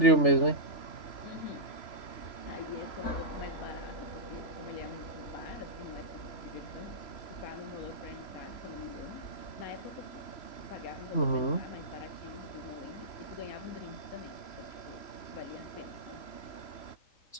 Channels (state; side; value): late; right; 3.0 ms